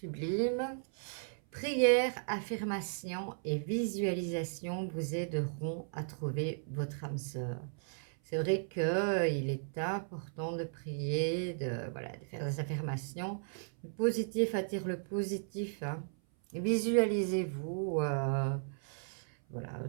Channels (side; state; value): left; silent; 54 dB below the other